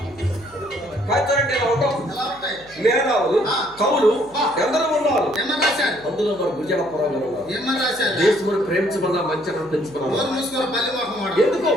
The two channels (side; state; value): right; noise; hum, 26 dB below the sound